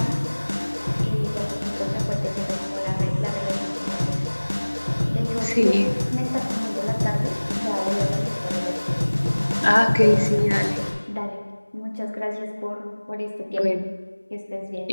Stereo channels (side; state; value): both; inverted; correlation -1.00